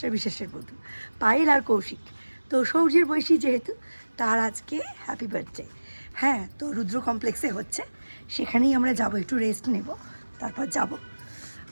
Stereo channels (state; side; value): inverted; both; correlation -1.00